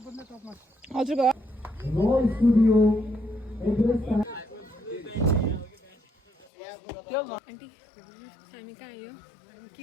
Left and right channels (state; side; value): drops out; right; at 6.5 s